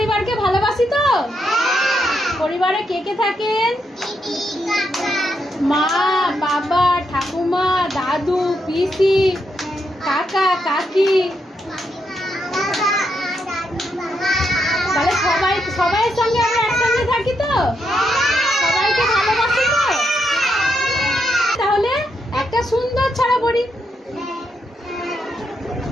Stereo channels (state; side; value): normal; both; correlation 0.81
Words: ভালোবাসি তো? পরিবারে কে কে থাকেন? মা, বাবা, ঠাকুমা, দাদু, পিসি, কাকা, কাকি। তাহলে সবাই সঙ্গে আমরা একসঙ্গে থাকি তো? সবাইকে ভালোবাসি তো? তাহলে একটা সুন্দর ছড়া পড়ি।